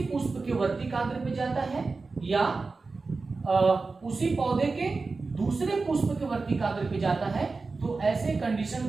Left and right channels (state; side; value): quieter; left; 4.0 dB